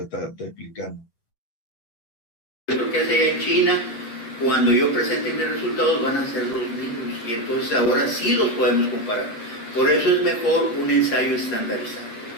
está explicando. Lo que hace allá en China, cuando yo presente mis resultados van a ser los mismos, y entonces ahora sí los podemos comparar. Por eso es mejor un ensayo estandarizado.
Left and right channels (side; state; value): right; late; 8.7 ms